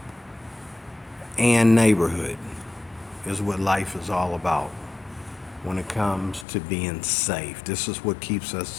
and neighborhood is what life is all about when it comes to being safe. This is what keeps us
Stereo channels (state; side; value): drops out; right; at 6.5 s